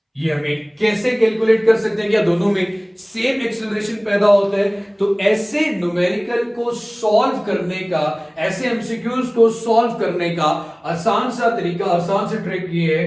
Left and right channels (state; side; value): identical; both; correlation 1.00